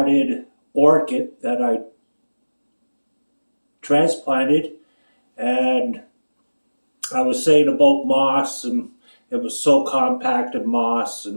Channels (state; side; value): inverted; both; correlation -1.00